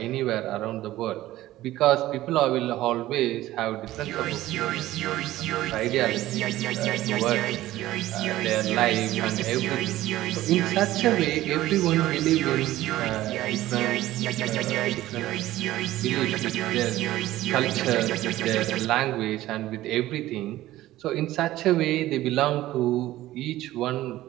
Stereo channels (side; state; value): left; quieter; 15.5 dB